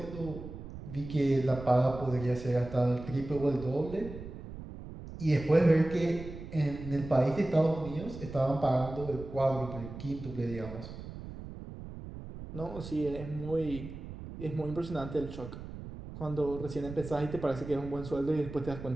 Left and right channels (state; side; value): noise; right; rumble, 11 dB below the sound